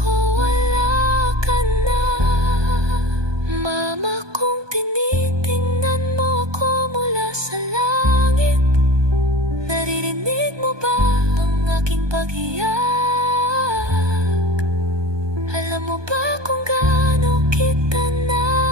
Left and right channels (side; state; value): left; late; 1.2 ms